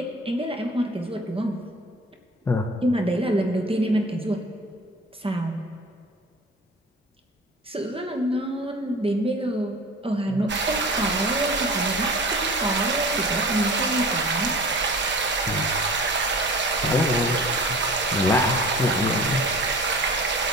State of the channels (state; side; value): normal; both; correlation 0.40